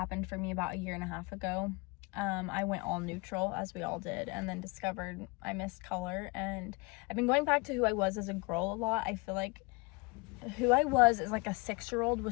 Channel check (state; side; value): quieter; right; 26.9 dB